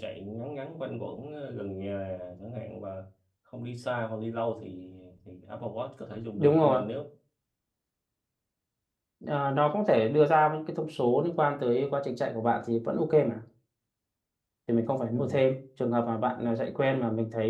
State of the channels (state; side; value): identical; both; correlation 1.00